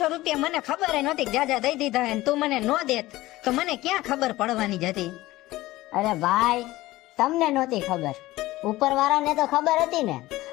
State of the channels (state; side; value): quieter; right; 17.7 dB